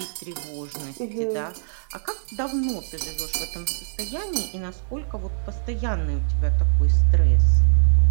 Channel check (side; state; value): left; silent; digital silence